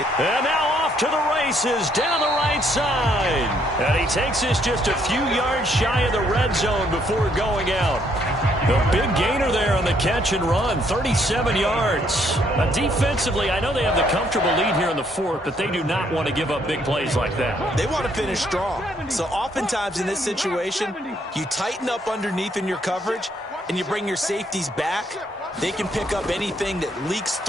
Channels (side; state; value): both; normal; correlation 0.69